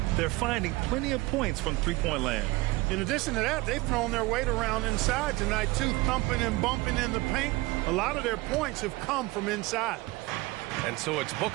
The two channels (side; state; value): left; quieter; 21.3 dB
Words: They're finding plenty of points from three-point land. In addition to that, they've thrown their weight around inside tonight, too, thumping and bumping in the paint. A lot of their points have come from inside. And so it's